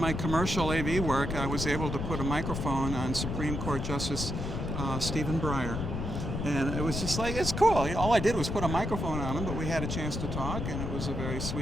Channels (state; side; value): noise; left; rumble, 3 dB below the sound